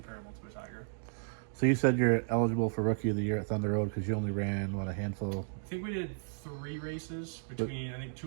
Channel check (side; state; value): left; silent; digital silence